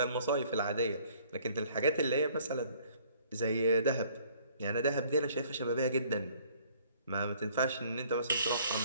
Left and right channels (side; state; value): both; inverted; correlation -0.58